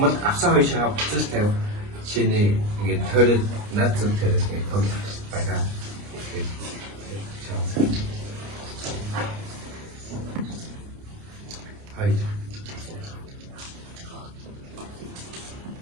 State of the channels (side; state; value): left; late; 29 ms